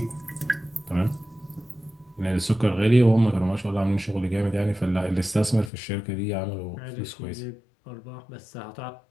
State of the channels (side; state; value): right; drops out; at 5.7 s